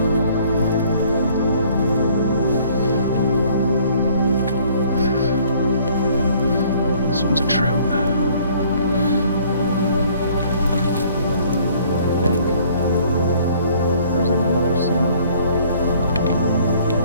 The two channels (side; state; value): both; inverted; correlation -0.58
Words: This one's a trout. I think. There's another salmon.